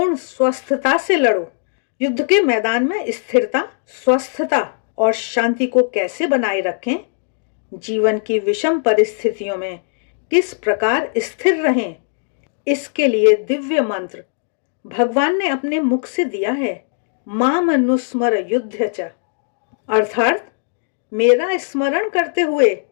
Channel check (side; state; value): right; silent; digital silence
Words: स्वस्थता से लड़ो। युद्ध के मैदान में स्थिरता, स्वस्थता और शांति को कैसे बनाए रखें, जीवन की विषम परिस्थितियों में किस प्रकार स्थिर रहें, इसके लिए दिव्य मंत्र भगवान ने अपने मुख से दिया है। माम अनुस्मर युद्ध च, अर्थात मेरा स्मरण करते हुए